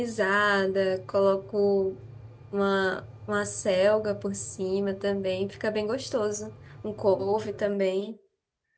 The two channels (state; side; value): identical; both; correlation 1.00